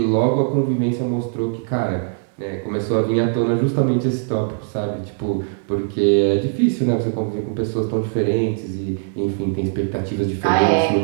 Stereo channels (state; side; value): silent; left; 65 dB below the other